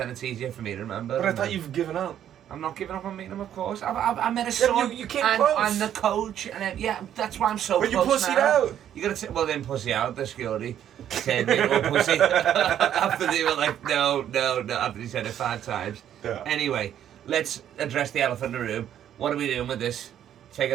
it's easier for me to remember. But I thought you've given up. I'm not giving up on meeting him, of course. I met a son. You came and close. I'm the coach, and yeah, that's why I'm so but close. But you pussied now. out. You gotta well then pussy out. The security said me to pussy after they were like no. After he said it 5 times. Yeah. Anyway, let's address the elephant in the room. What are we doing with this? Take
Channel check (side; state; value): left; quieter; 10.4 dB